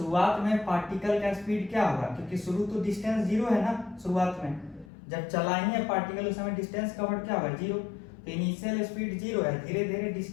में पार्टिकल का स्पीड क्या होगा, क्योंकि शुरू तो डिस्टेंस जीरो है ना, शुरुआत में जब चला ही है पार्टिकल उस समय डिस्टेंस कवर्ड क्या होगा, जीरो। तो इनिशियल स्पीड जीरो है, धीरे धीरे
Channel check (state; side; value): drops out; right; at 4.9 s